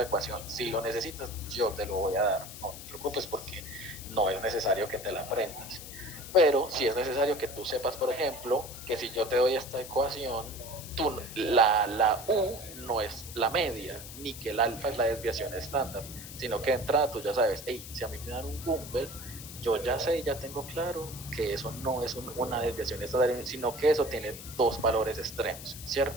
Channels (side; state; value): left; noise; hiss, 12 dB below the sound